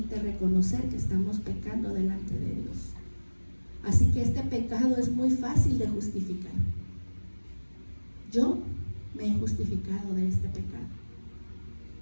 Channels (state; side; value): inverted; both; correlation -1.00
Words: reconocer que estamos pecando delante de Dios. Así que este pecado es muy fácil de justificar. Yo me he justificado de este pecado,